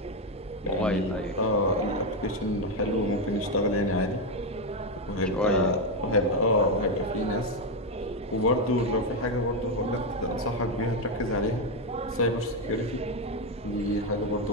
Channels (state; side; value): normal; both; correlation 0.07